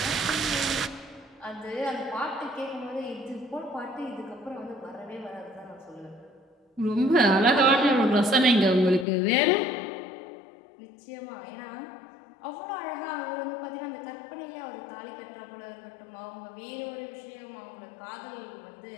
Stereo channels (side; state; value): right; drops out; at 9.1 s